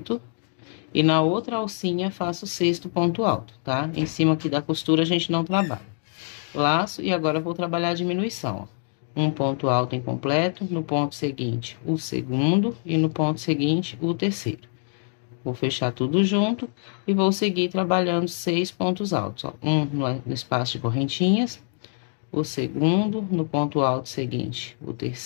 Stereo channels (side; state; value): right; silent; 60 dB below the other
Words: E na outra alcinha, faço o sexto ponto alto, tá? Em cima aqui da costura, a gente não trabalha. Laço, e agora vou trabalhar a diminuição, ó. Um ponto alto incompleto, no ponto seguinte, o segundo. E no ponto seguinte, o terceiro. Vou fechar tudo junto e vou seguir trabalhando 6 pontos altos, ó. Um no espaço de correntinhas, o segundo, no ponto alto seguinte, o